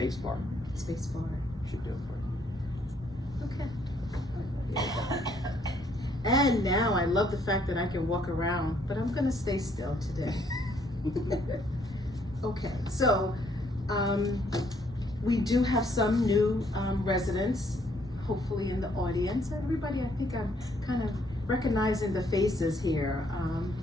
bar. Space bar. Should do it for you. Okay. And now I love the fact that I can walk around, but I'm gonna stay still today. Okay, so we do have some new residents, hopefully in the audience. Everybody, I think I'm kind of recognizing the faces here.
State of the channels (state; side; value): normal; both; correlation 0.68